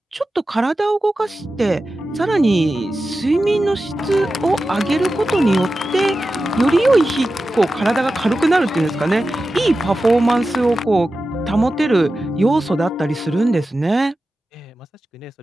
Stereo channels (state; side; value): normal; both; correlation 0.93